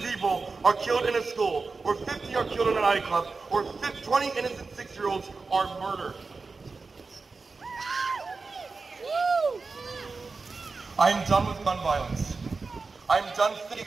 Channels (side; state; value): left; quieter; 4.2 dB